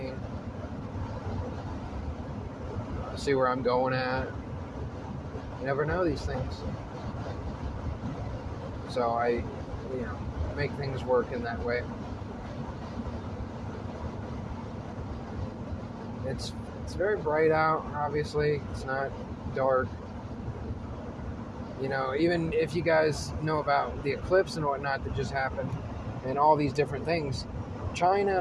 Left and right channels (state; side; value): identical; both; correlation 1.00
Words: See where I'm going at. You never know these things. So I, make things work in that way. It's very bright out, obviously. It's not dark. Even if you guys know about the eclipse and whatnot that just happened, and all these different things, China